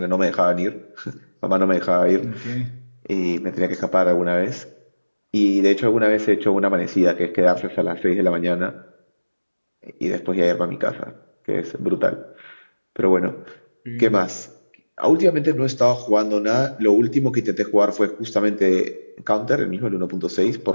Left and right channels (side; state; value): both; inverted; correlation -1.00